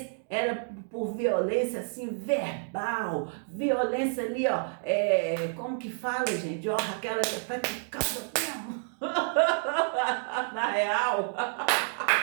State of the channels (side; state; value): left; silent; 58 dB below the other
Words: era por violência assim verbal, violência ali, ó, como que fala, gente? Ó, aquela que praticava mesmo. Na real.